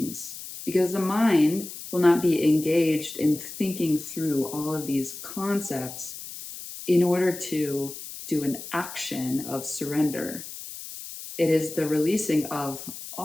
because the mind will not be engaged in thinking through all of these concepts in order to do an action of surrender. It is the releasing of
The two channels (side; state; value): left; noise; hiss, 11 dB below the sound